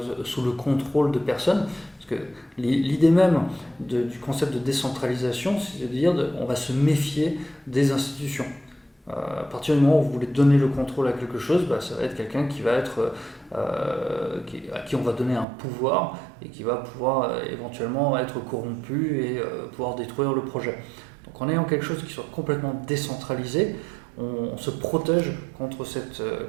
sous le contrôle de personnes. Parce que l'idée même du concept de décentralisation, c'est de dire on va se méfier des institutions. À partir du moment où vous voulez donner le contrôle à quelque chose, ça va être quelqu'un qui va être à qui on va donner un pouvoir et qui va pouvoir éventuellement être corrompu et pouvoir détruire le projet. Donc en ayant quelque chose qui soit complètement décentralisé, on se protège contre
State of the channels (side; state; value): left; drops out; at 15.5 s